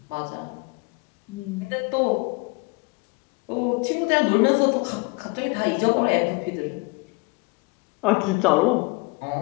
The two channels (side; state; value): right; quieter; 28.9 dB